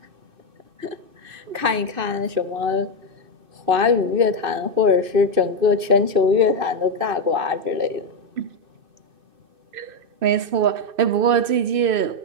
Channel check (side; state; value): left; late; 2.6 ms